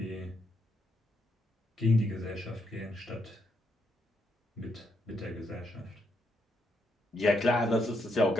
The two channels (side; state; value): both; normal; correlation 0.78